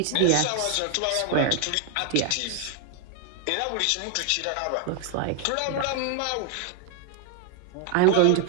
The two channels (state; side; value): different; both; correlation 0.00